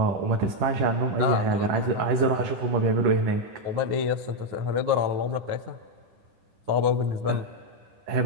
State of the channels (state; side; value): late; left; 10 ms